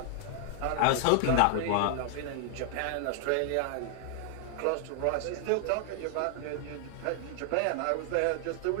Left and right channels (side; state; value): both; different; correlation 0.00